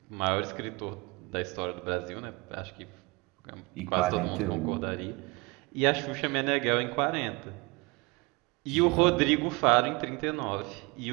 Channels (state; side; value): quieter; left; 26.4 dB